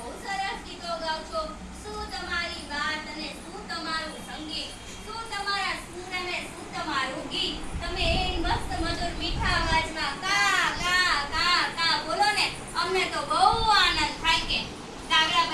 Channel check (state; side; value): identical; both; correlation 1.00